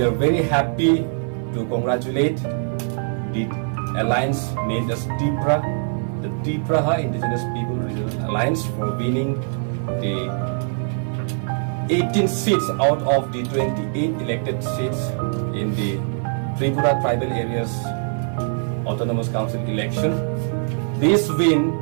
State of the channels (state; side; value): silent; left; 64 dB below the other